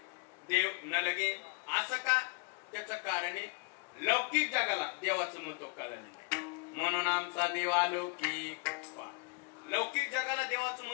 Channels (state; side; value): quieter; right; 32.2 dB